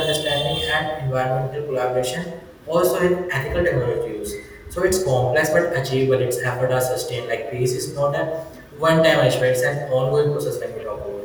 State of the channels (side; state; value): both; identical; correlation 1.00